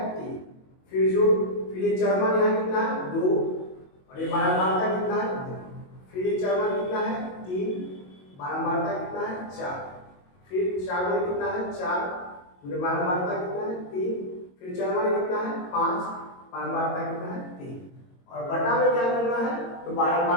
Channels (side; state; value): right; late; 22 ms